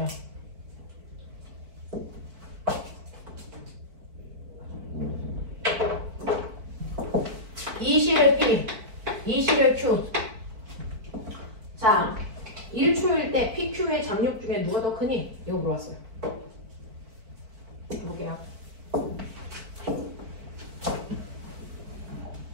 이실의 P, 이실의 Q. 자, 1초일 때 PQ의 장력 중에 누가 더 크니? 이거 물어봤어요. 해볼게요.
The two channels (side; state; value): left; late; 4.5 ms